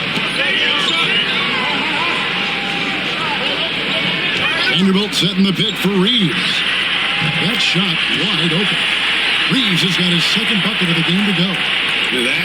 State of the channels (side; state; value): left; noise; hum, 26 dB below the sound